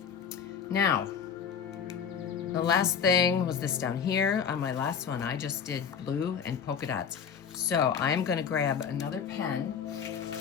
Now, the last thing was this down here. On my last one, I just did blue and polka dots. So I'm gonna grab another pen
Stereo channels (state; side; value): quieter; right; 7.1 dB